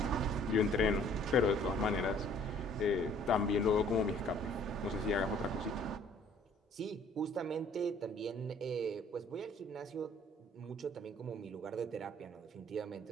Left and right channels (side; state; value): both; normal; correlation 0.57